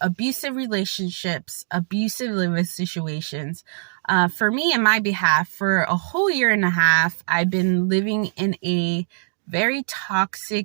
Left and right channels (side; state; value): left; silent; digital silence